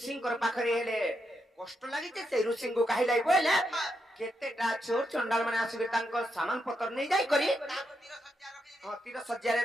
पाखरे हेले कष्ट लागिते सेई ऋषिंको काहिलाई बोले केतेटा चोर चंडाल माने आसीबे तांकर सामान पत्र नै जाई करी तीर सज्जा रे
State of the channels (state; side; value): normal; both; correlation 0.82